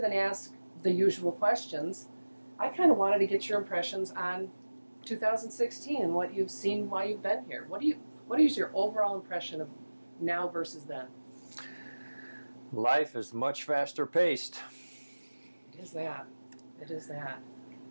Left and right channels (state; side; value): inverted; both; correlation -1.00